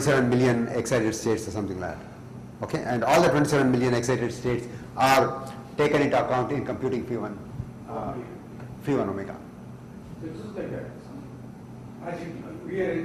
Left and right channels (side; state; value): both; identical; correlation 1.00